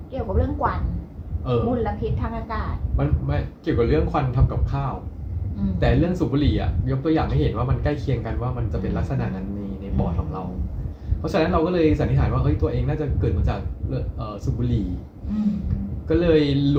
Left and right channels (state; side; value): identical; both; correlation 1.00